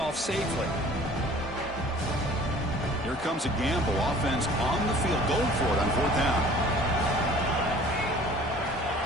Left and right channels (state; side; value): normal; both; correlation 0.49